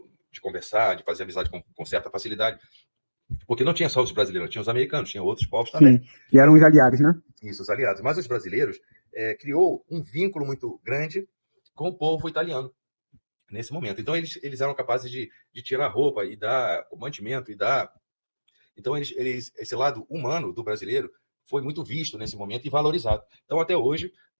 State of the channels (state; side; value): inverted; both; correlation -1.00